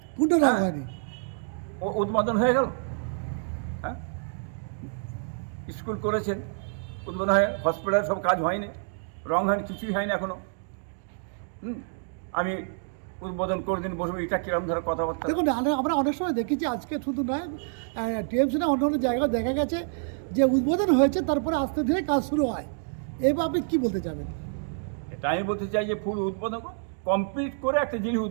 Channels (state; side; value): silent; left; digital silence